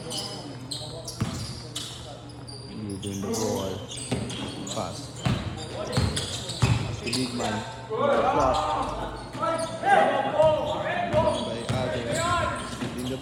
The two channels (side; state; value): both; identical; correlation 1.00